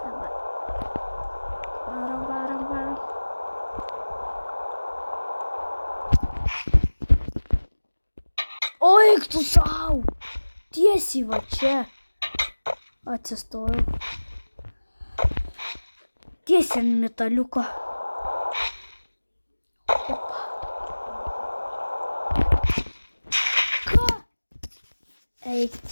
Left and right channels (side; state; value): both; inverted; correlation -1.00